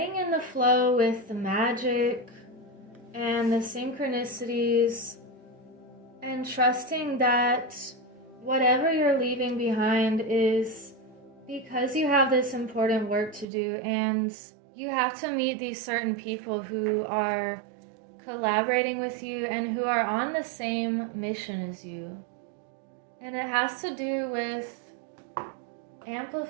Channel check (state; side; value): drops out; left; at 13.5 s